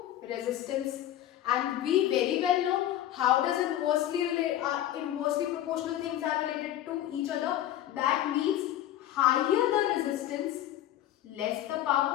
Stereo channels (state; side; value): quieter; right; 12.6 dB